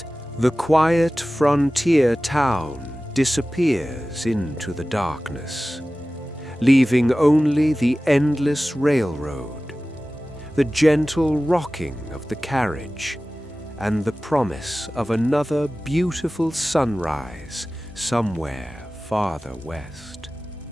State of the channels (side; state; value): both; normal; correlation 0.96